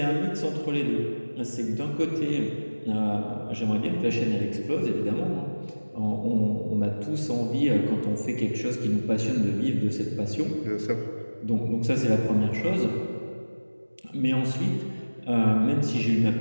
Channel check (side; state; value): both; inverted; correlation -1.00